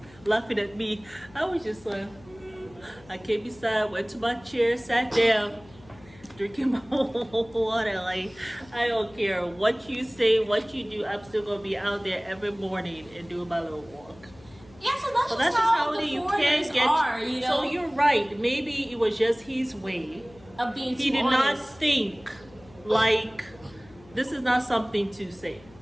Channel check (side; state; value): left; noise; hum, 24 dB below the sound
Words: laughing at me. I was just like, I came beside, went to my chair, sat down. Drinking my water, like I don't care what you say, what you do. I'm still gonna be out there every morning and doing my little walk. Yeah, so that's, That's just how the foreigners are, So you're right. Maybe it was just his way of being. He did not think like this is not something to say.